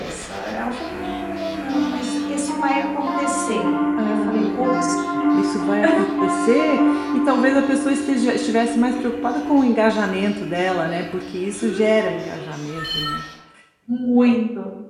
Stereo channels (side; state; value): both; identical; correlation 1.00